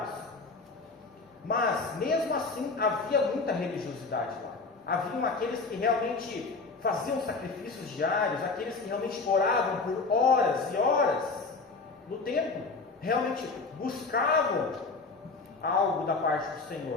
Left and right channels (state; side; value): quieter; right; 4.1 dB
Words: Mas mesmo assim havia muita religiosidade lá. Haviam aqueles que realmente faziam sacrifícios diários, aqueles que realmente oravam por horas e horas no templo, realmente buscavam algo da parte do